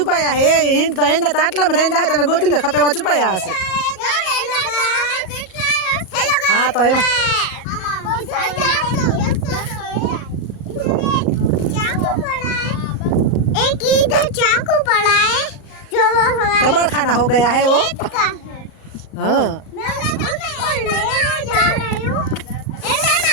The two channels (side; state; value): right; late; 37 ms